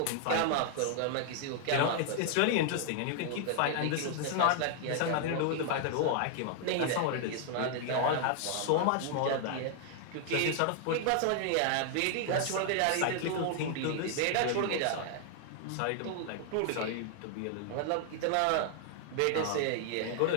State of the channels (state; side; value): different; both; correlation 0.00